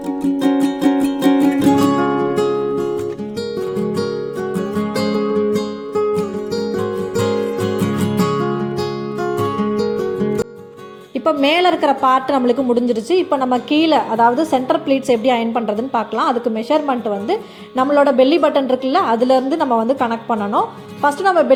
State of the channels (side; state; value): both; identical; correlation 1.00